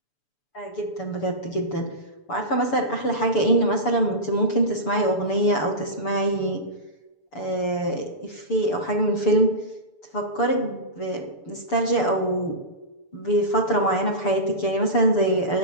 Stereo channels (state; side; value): late; right; 6.9 ms